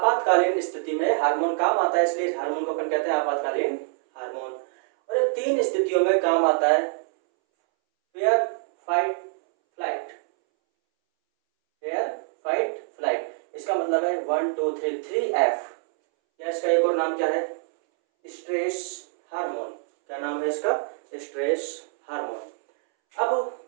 स्थिति में हार्मोन काम आता है, इसलिए इस हार्मोन को अपन कहते हैं आपातकालीन हार्मोन। और ये 3 स्थितियों में काम आता है, fair, fight, flight. Fair, fight, flight, इसका मतलब है 1 2 3 3F, या इसका एक और नाम क्या है? Stress hormone. क्या नाम है इसका? Stress hormone. अब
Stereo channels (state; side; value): silent; left; 62 dB below the other